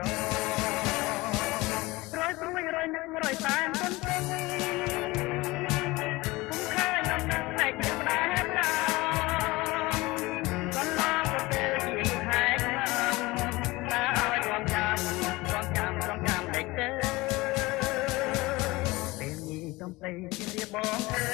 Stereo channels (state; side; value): quieter; right; 21.1 dB